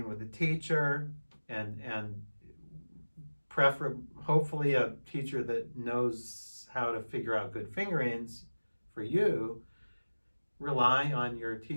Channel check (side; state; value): both; inverted; correlation -1.00